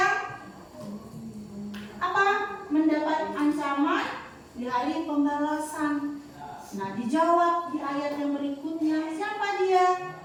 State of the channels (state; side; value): identical; both; correlation 1.00